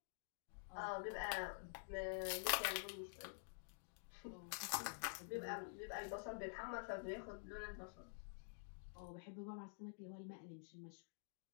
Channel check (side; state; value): right; silent; digital silence